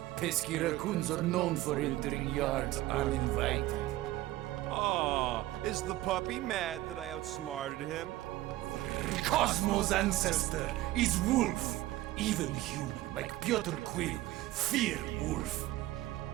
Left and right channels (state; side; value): quieter; left; 16.5 dB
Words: Pesky raccoons are known for entering yards uninvited. Oh, is the puppy mad that I outsmarted him? Cosmo's ancestor is wolf. Even human, like Piotr Quill, fear wolf.